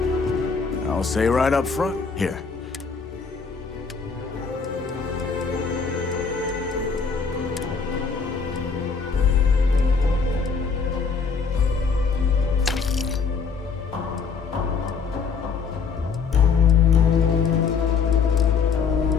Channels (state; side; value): quieter; right; 5.4 dB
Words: I'll say right up front. Here.